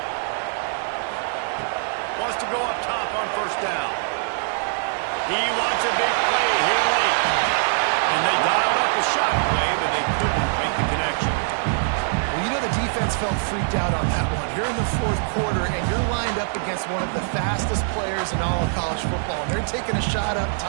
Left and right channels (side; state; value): left; silent; 63 dB below the other